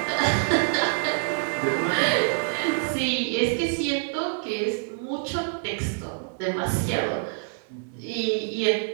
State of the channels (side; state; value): left; silent; digital silence